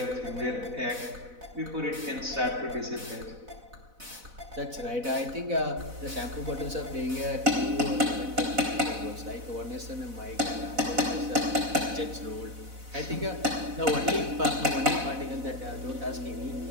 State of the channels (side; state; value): left; late; 4.0 ms